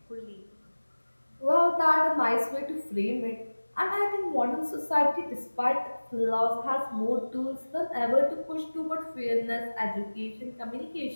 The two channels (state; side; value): inverted; both; correlation -1.00